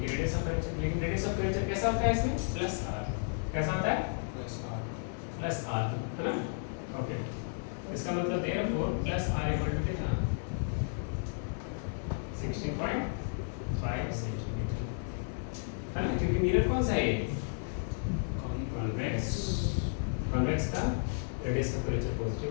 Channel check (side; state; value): right; silent; 55 dB below the other